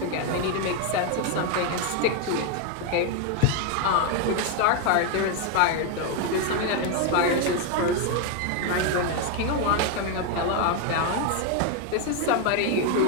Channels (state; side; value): different; both; correlation 0.01